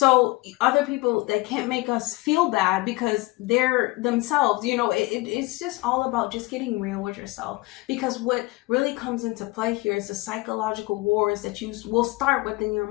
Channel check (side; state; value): right; quieter; 22.0 dB